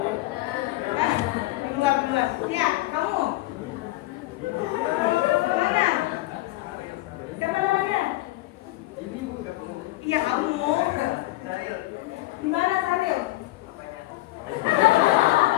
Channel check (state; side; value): quieter; right; 18.4 dB